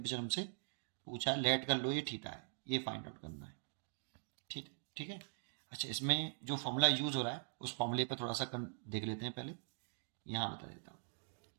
हमसे पूछा है, लेट कर लो ये थीटा है, ये फाइंड आउट करना है। ठीक है। अच्छा, इसमें जो फॉर्मूला यूज हो रहा है उस फॉर्मूले पर थोड़ा सा देख लेते हैं। पहले यहाँ बता देता हूँ,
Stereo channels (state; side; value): silent; left; digital silence